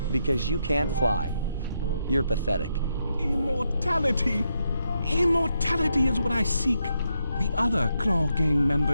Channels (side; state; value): both; inverted; correlation -0.82